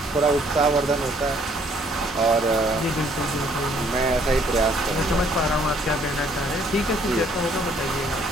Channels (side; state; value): both; normal; correlation 0.63